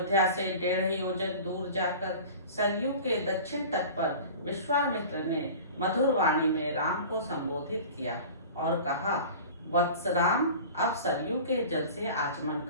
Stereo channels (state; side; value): inverted; both; correlation -0.39